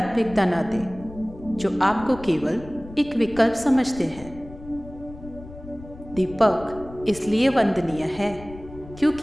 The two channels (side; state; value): left; noise; rumble, 17 dB below the sound